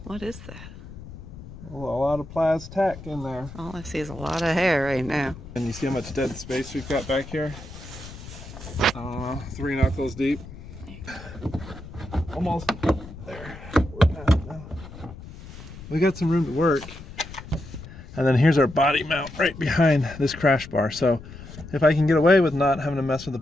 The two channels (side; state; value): left; noise; rumble, 15 dB below the sound